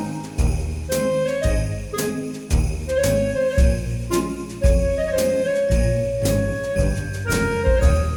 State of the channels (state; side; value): identical; both; correlation 1.00